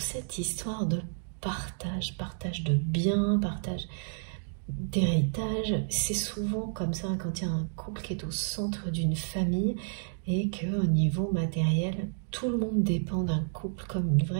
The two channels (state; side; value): silent; left; digital silence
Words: cette histoire de partage de biens, partage d'héritage. C'est souvent comme ça quand il y a un couple qui est au centre d'une famille et qu'au niveau matériel, tout le monde dépend d'un couple comme une